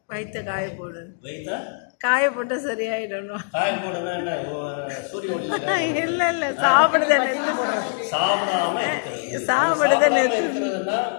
வயிற்ற காய போடு. வயிற்ற காய போட்டு சரியாயிடணும். காய போடுனா என்ன? சூரிய ஒளி இல்லை இல்லை, சாப்பிடாம இருக்கிறதுனா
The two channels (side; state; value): right; silent; digital silence